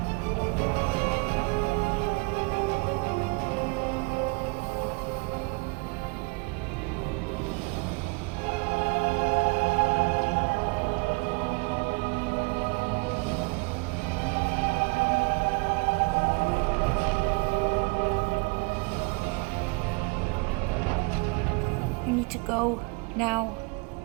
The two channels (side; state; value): left; quieter; 29.7 dB